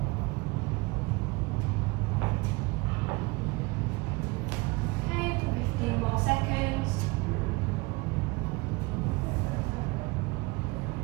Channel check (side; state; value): left; quieter; 24.9 dB